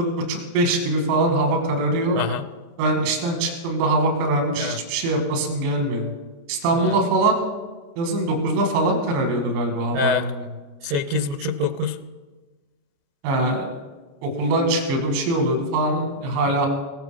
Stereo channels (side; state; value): left; late; 29 ms